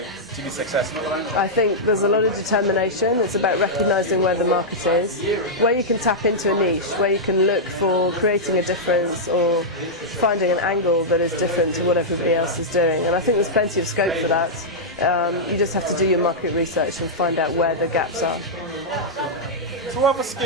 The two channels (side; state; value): both; normal; correlation -0.08